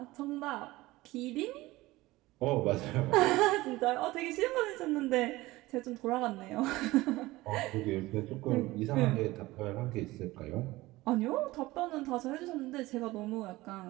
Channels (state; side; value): quieter; left; 19.0 dB